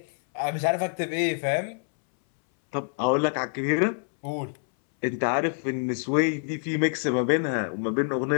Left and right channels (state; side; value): silent; right; 61 dB below the other